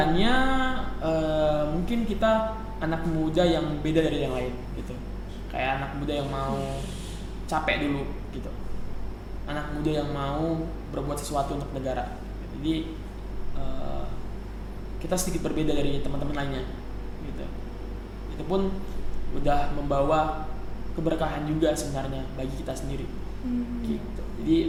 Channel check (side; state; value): both; identical; correlation 1.00